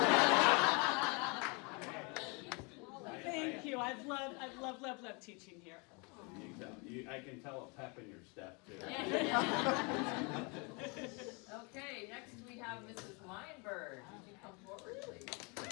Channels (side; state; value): right; quieter; 31.5 dB